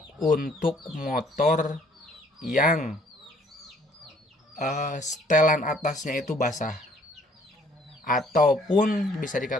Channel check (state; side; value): normal; both; correlation 0.61